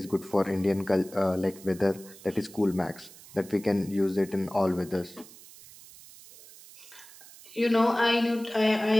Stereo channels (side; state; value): right; noise; hiss, 20 dB below the sound